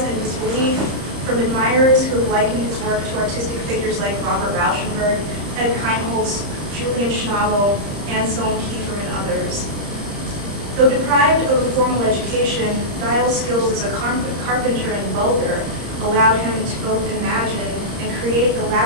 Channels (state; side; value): late; left; 30 ms